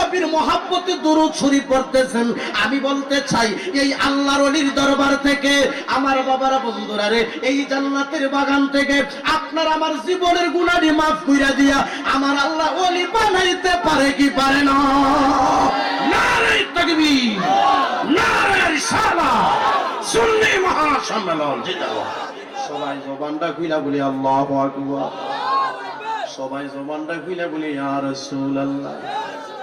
মহব্বতে দুরূদ শরীফ পড়তেছেন। আমি বলতে চাই, এই আল্লাহর ওলির দরবার থেকে আমার বাবারা বন্ধুরা রে, এই জান্নাতের বাগান থেকে আপনার আমার জীবনের গুনাহ মাফ কইরা দিয়া আমার আল্লাহ ওলি বানাইতে পারে কি পারে না? নারে তাকবীর, নারে রিসালাহ, সুন্নি মহাসম্মেলন জিন্দাবাদ। সবাই জবানটা খুইলা বলি আল্লাহু আকবার, সবাই জবানটা খুইলা বলি ইয়া রাসূলুল্লাহ।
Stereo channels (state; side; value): identical; both; correlation 1.00